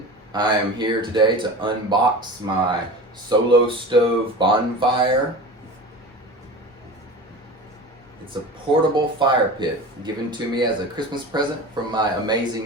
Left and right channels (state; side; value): normal; both; correlation 0.33